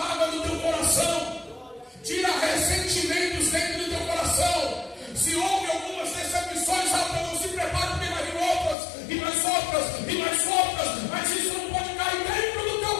do teu coração. Tira ressentimentos dentro do teu coração. Se houve algumas decepções, não se prepare, porque vai vir outras, e mais outras, e mais outras. Mas isso não pode cair dentro do teu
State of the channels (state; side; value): drops out; right; at 8.8 s